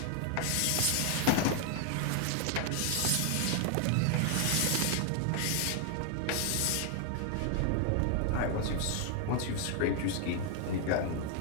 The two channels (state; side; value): different; both; correlation 0.00